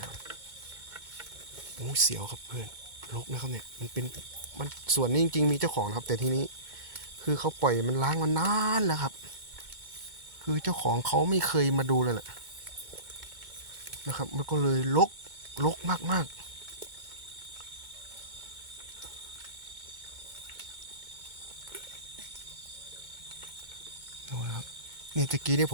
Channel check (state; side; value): late; left; 2.2 ms